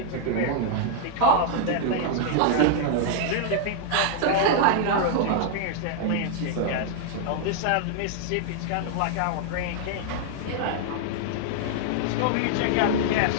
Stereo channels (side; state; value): both; different; correlation -0.01